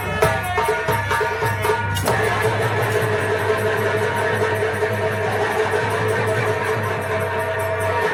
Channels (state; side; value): identical; both; correlation 1.00